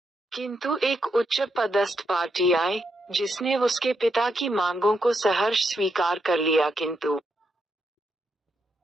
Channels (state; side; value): normal; both; correlation 0.81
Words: किंतु एक उच्च पदस्थ पार्टी आई, जिसने उसके पिता की मांगों को सहर्ष स्वीकार कर लिया। किंतु